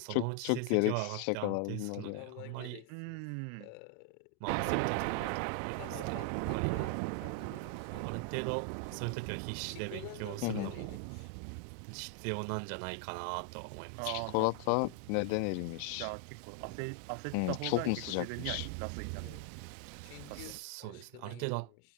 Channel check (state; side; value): different; both; correlation 0.00